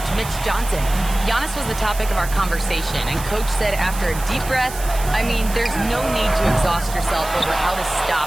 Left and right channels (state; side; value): noise; right; hiss, 12 dB below the sound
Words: Mitch Johnson. Giannis was the topic of our conversation, and coach said after a deep breath, I mean, there's no need to exhaust yourself over how to